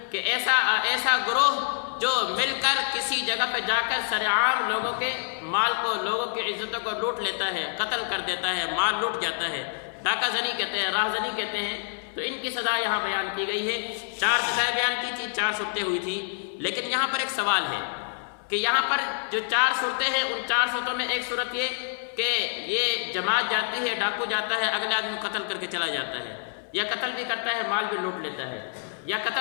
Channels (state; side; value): silent; right; 60 dB below the other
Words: کہ ایسا گروہ جو مل کر کسی جگہ پہ جا کر سرعام لوگوں کے مال کو، لوگوں کی عزتوں کو لوٹ لیتا ہے، قتل کر دیتا ہے، مال لوٹ جاتا ہے، ڈاکہ زنی کہتے ہیں، راہ زنی کہتے ہیں۔ تو ان کی سزا یہاں بیان کی گئی ہے۔ 4 سزائیں بیان کی تھی، 4 صورتیں ہوئی تھی، لیکن یہاں پر ایک سوال ہے کہ یہاں پر جو 4 صورتیں ہیں، ان 4 صورتوں میں ایک صورت یہ کہ یہ جماعت جاتی ہے، ڈاکو جاتا ہے، اگلے آدمی کو قتل کر کے چلا جاتا ہے، یا قتل بھی کرتا ہے، مال بھی لوٹ لیتا ہے، یا